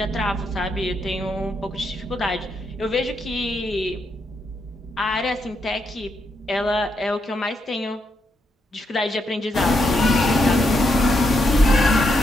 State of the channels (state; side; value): normal; both; correlation 0.80